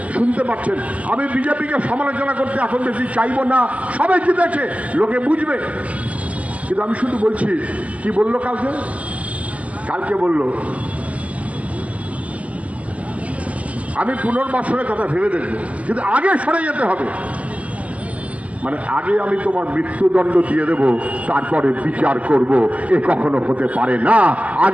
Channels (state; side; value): late; left; 0.068 ms